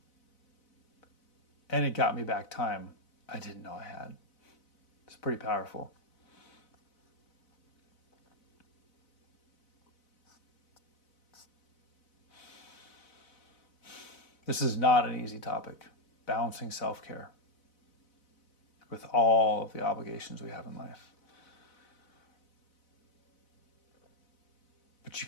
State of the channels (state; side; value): late; right; 4.0 ms